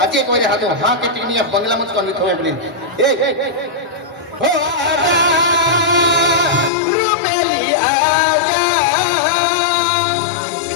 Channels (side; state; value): right; drops out; at 6.7 s